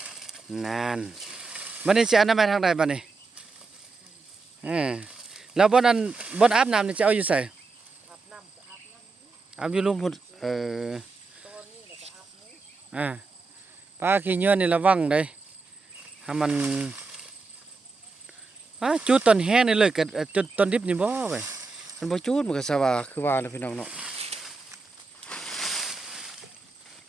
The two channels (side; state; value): left; quieter; 4.1 dB